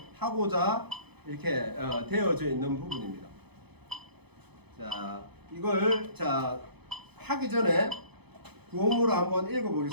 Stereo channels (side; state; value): left; late; 0.98 ms